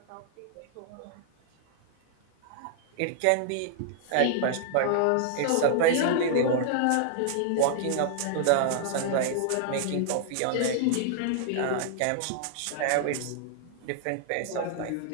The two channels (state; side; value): different; both; correlation -0.01